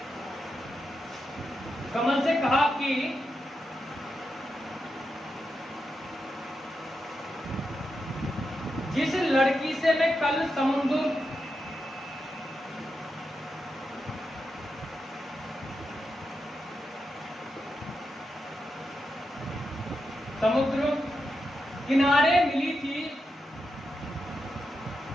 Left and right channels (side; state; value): both; normal; correlation 0.86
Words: कमल से कहा कि जिस लड़की से मैं कल समुद्र किनारे मिली थी